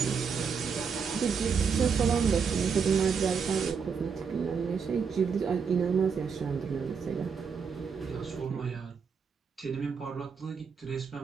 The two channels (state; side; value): quieter; left; 6.1 dB